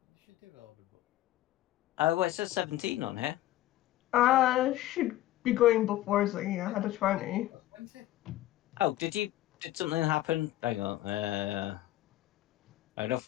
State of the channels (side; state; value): right; quieter; 14.9 dB